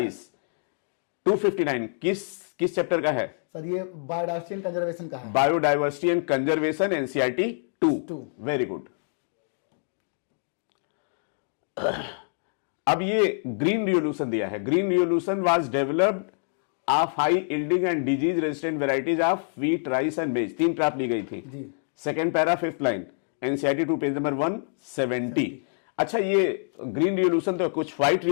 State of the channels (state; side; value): silent; right; digital silence